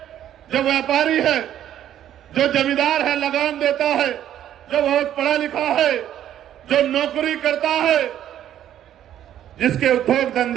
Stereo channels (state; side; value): quieter; left; 11.2 dB